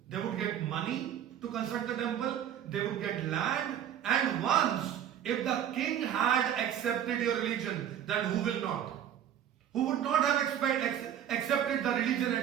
They would get money to construct the temple, they would get land, and once if the king had accepted your religion, then who will not? Who would not have accepted the religion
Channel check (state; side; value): quieter; left; 9.9 dB